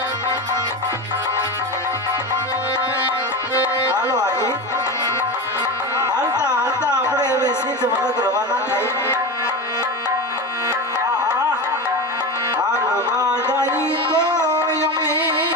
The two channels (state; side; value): normal; both; correlation 0.23